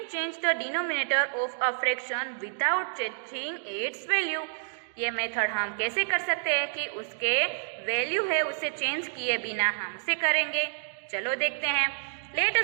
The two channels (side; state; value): left; silent; digital silence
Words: change the denominator of a fraction without changing its value. ये मेथड हम कैसे कर सकते हैं कि उसके वैल्यू है उसे चेंज किए बिना हम उसे करेंगे। चलो देखते हैं। Let